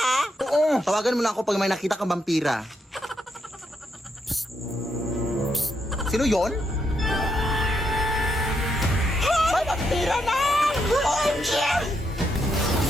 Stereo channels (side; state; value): both; normal; correlation 0.79